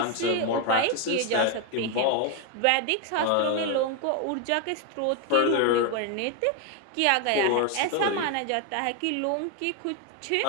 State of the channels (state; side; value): different; both; correlation 0.01